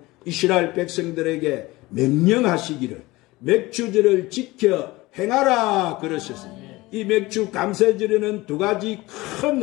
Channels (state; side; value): quieter; right; 20.4 dB